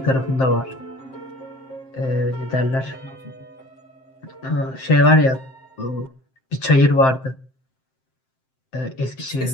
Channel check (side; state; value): right; late; 7.7 ms